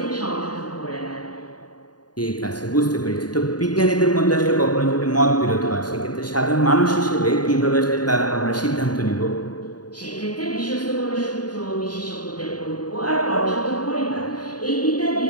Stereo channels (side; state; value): right; late; 0.69 ms